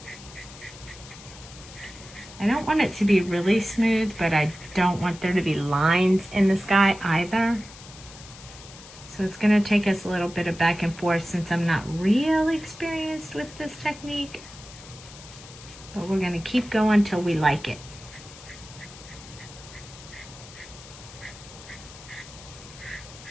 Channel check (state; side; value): noise; left; hiss, 18 dB below the sound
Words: I don't want it to be really smooth, but I don't want there to be lines in the sky either. So it's going to take us a little bit of back and forth since I'm not really experienced with this technique. But we're going to keep going till we like it.